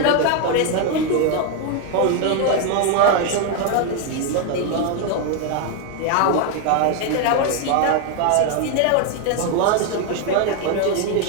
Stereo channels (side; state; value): both; different; correlation 0.01